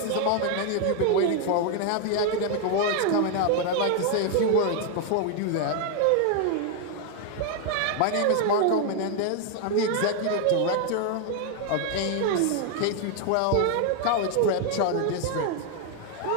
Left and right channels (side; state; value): both; different; correlation 0.00